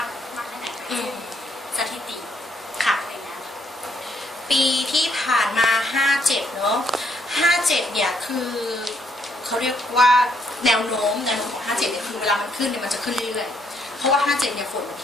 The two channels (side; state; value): both; normal; correlation 0.72